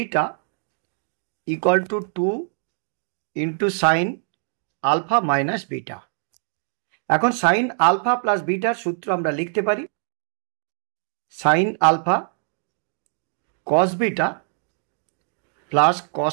equal to 2 into sine alpha minus beta. এখন সাইন আলফা প্লাস বিটার সূত্র আমরা লিখতে পারি sine alpha cos beta plus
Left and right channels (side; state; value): left; silent; digital silence